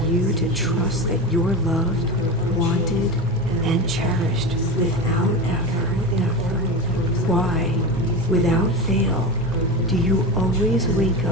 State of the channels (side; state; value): both; normal; correlation 0.23